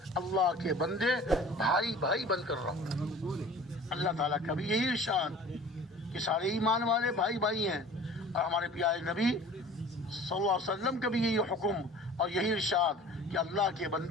اللہ کے بندے بھائی بھائی بن کر رہو. اللہ تعالیٰ کا بھی یہی ارشاد کہ سارے ایمان والے بھائی بھائی ہیں، اور ہمارے پیارے نبی صلی اللہ علیہ وسلم کا بھی یہی حکم اور یہی ارشاد کہ اللہ کے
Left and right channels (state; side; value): normal; both; correlation 0.44